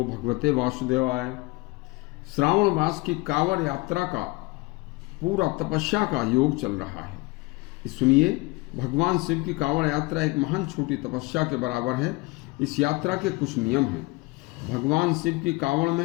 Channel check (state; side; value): quieter; right; 23.8 dB